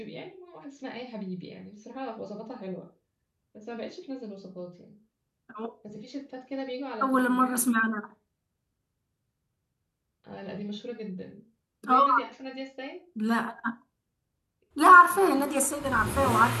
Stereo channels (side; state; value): both; identical; correlation 1.00